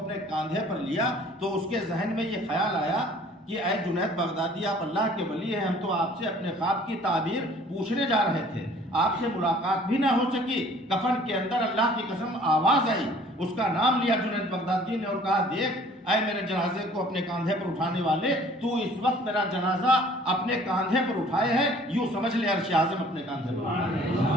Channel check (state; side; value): normal; both; correlation 0.53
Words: کاندھے پر لیا تو اس کے ذہن میں یہ خیال آیا کہ اے جنید بغدادی آپ اللہ کے ولی ہیں، ہم تو آپ سے اپنے خواب کی تعبیر پوچھنے جا رہے تھے، آپ سے ملاقات بھی نہ ہو سکی۔ کفن کے اندر اللہ کی قسم آواز آئی، اس کا نام لیا جنید بغدادی نے اور کہا دیکھ اے میرے جنازے کو اپنے کاندھے پر اٹھانے والے، تو اس وقت میرا جنازہ اپنے کاندھے پر اٹھائے ہے، یوں سمجھ لے عرش اعظم اپنے کاندھے پر۔